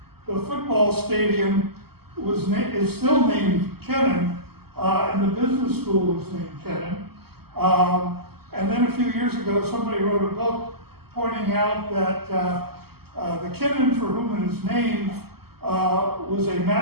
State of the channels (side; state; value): left; late; 0.96 ms